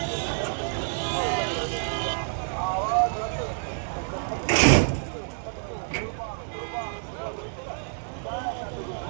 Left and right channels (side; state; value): left; silent; 59 dB below the other